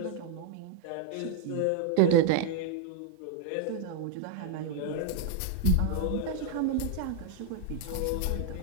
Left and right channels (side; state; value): both; different; correlation 0.00